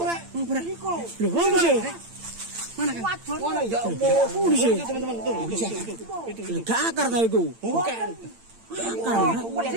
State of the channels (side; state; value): left; late; 8.8 ms